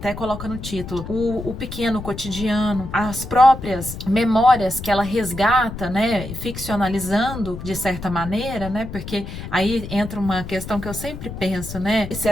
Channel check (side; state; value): left; noise; rumble, 10 dB below the sound